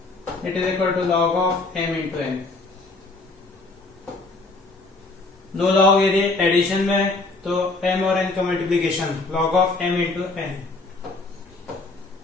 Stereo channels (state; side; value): quieter; right; 3.4 dB